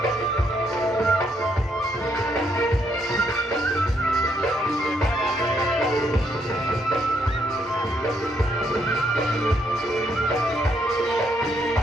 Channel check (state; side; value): normal; both; correlation 0.74